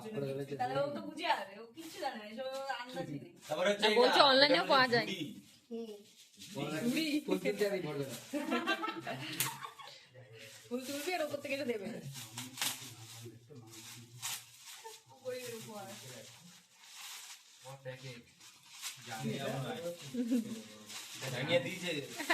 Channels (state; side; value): identical; both; correlation 1.00